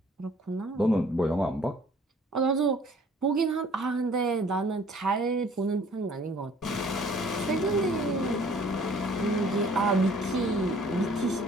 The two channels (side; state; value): both; normal; correlation 0.55